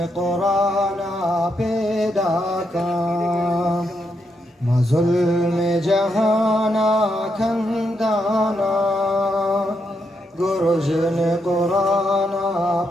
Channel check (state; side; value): normal; both; correlation 0.81